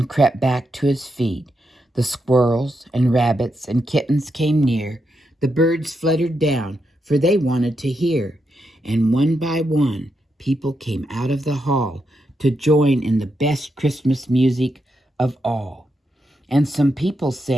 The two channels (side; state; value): both; normal; correlation 0.83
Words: crept back to his feet. The squirrels and rabbits and kittens came near. The birds fluttered down, for they wanted to hear. And one by one, people came out of the hall to join in the best Christmas music of all. And some people